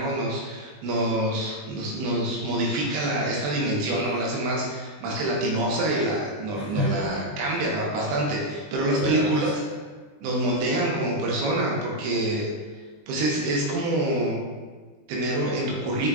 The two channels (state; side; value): late; left; 20 ms